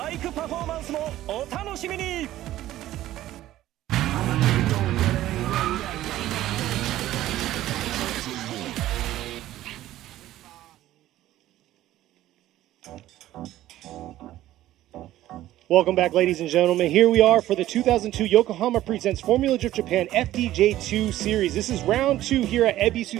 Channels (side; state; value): left; quieter; 14.3 dB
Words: イクパフォーマンスもお楽しみに。Welcome back, ladies and gentlemen. Here we are for the 2002 Yokohama Presents Formula Drift Japan FDJ2 Series. This is round 2 here at